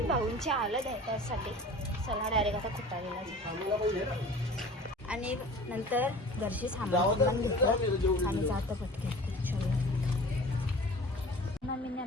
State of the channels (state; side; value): normal; both; correlation 0.42